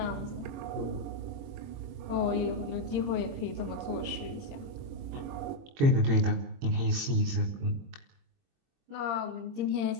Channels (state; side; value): late; left; 22 ms